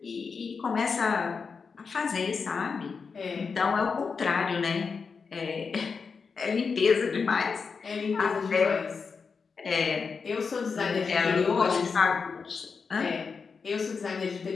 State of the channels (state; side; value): quieter; right; 5.3 dB